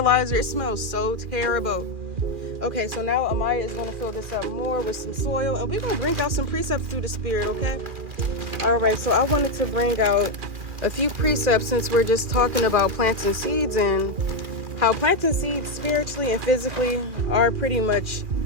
it smells so terrible. Okay, so now Amaya is going to fill this up more with some soil, and we're going to bring out some precepts through the spirit, okay? All right, so I wanted to bring out a few precepts since we're just talking about planting seeds and how planting seeds spiritually and physically are pretty much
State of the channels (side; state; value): left; late; 2.4 ms